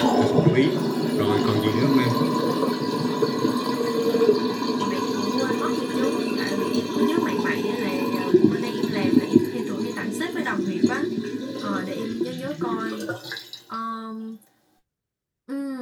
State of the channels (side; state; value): both; identical; correlation 1.00